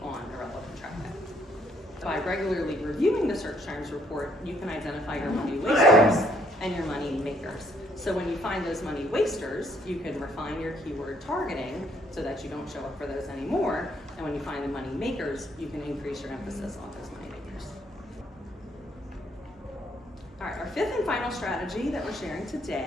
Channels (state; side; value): normal; both; correlation 0.68